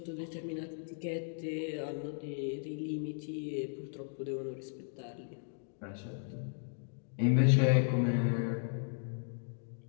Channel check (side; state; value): right; silent; digital silence